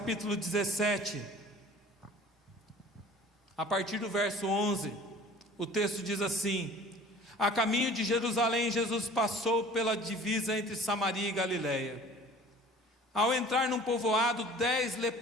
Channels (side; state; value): both; normal; correlation 0.47